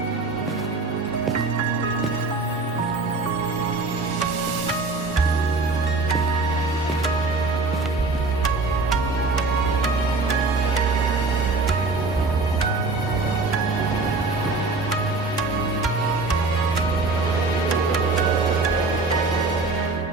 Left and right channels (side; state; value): left; quieter; 3.6 dB